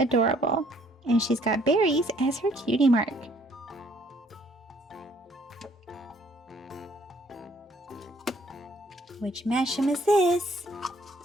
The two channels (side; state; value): both; normal; correlation 0.63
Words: And she's got berries as her cutie mark. Which mashem is this?